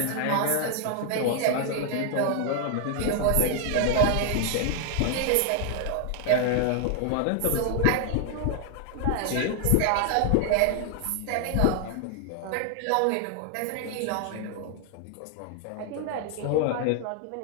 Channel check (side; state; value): both; different; correlation 0.00